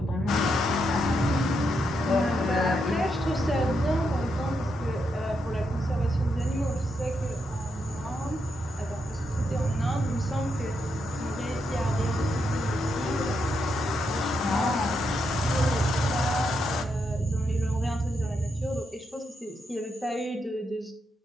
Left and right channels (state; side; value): normal; both; correlation 0.81